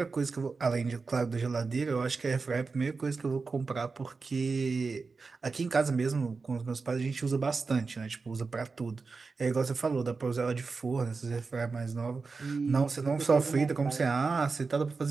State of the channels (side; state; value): left; quieter; 4.4 dB